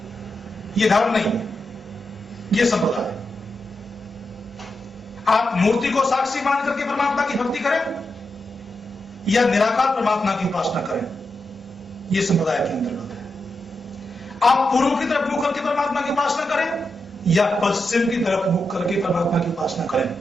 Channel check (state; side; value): normal; both; correlation 0.87